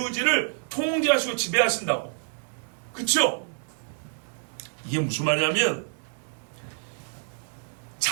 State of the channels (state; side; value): silent; left; digital silence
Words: 통제하시고 지배하신다고. 그쵸? 이게 무슨 말이냐면,